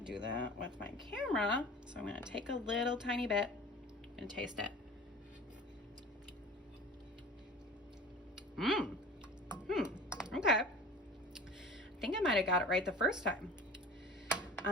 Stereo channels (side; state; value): both; normal; correlation 0.40